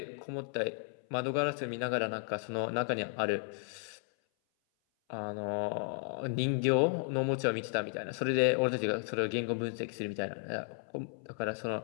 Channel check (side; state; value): right; silent; 55 dB below the other